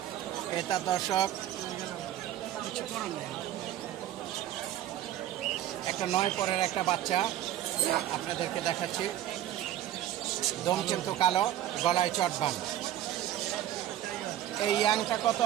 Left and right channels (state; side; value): quieter; left; 12.4 dB